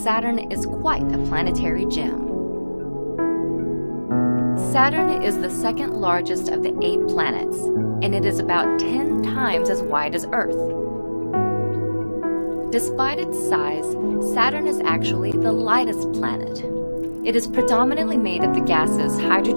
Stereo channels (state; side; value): inverted; both; correlation -1.00